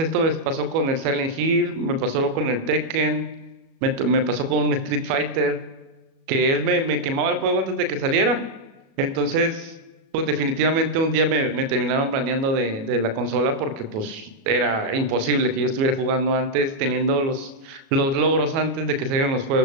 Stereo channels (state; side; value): late; left; 37 ms